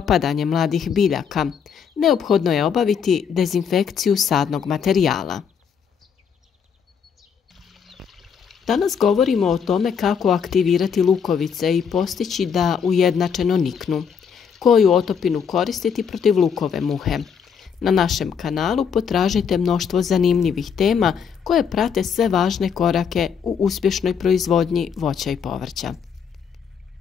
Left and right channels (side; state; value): right; quieter; 6.9 dB